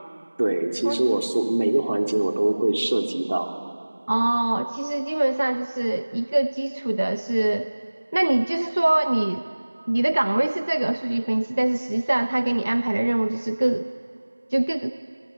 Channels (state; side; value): inverted; both; correlation -1.00